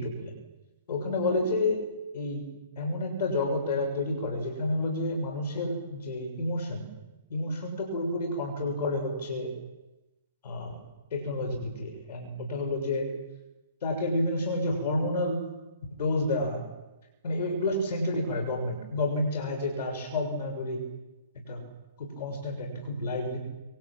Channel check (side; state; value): both; inverted; correlation -0.55